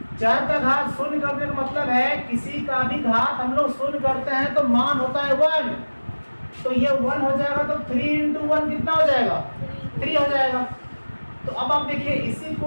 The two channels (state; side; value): inverted; both; correlation -1.00